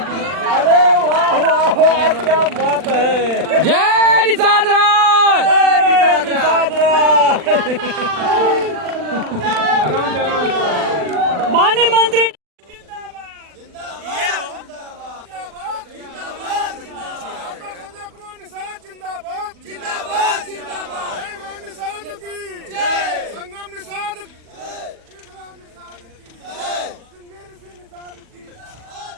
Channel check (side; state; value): left; late; 40 ms